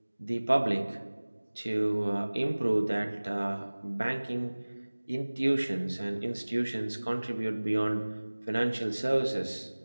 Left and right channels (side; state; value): both; inverted; correlation -1.00